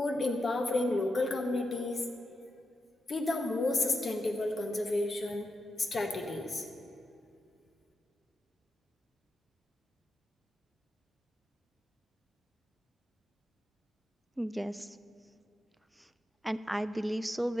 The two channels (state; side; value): normal; both; correlation 0.87